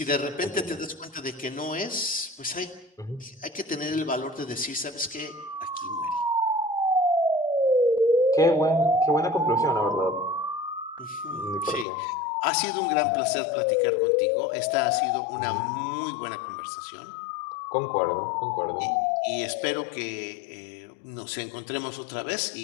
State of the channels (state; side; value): drops out; right; at 11.9 s